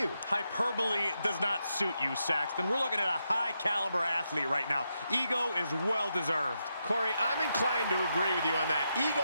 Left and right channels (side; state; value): both; inverted; correlation -0.84